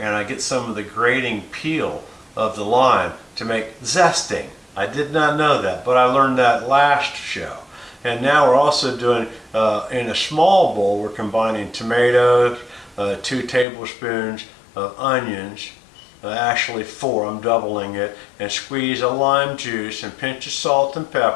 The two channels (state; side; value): drops out; right; at 13.7 s